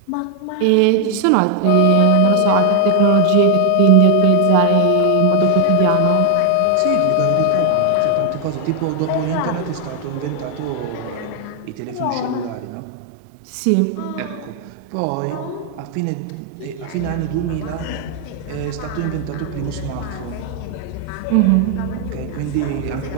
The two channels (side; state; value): both; different; correlation 0.00